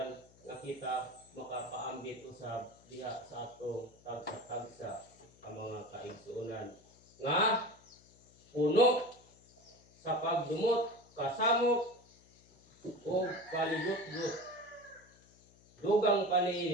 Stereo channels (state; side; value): noise; left; hum, 27 dB below the sound